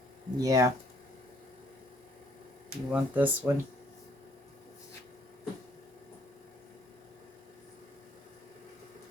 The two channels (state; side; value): normal; both; correlation 0.64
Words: Yeah. You want this one?